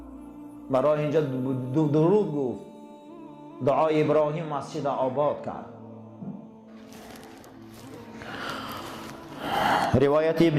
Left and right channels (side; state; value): both; identical; correlation 1.00